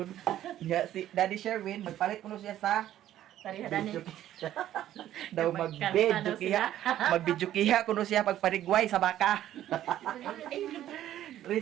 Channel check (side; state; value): left; quieter; 12.4 dB